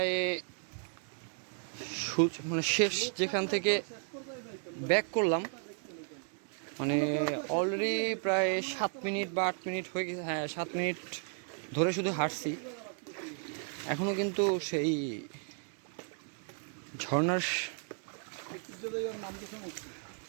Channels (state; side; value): silent; left; 55 dB below the other